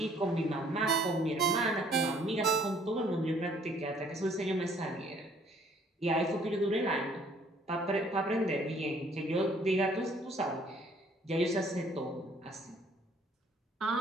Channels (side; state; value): both; normal; correlation 0.60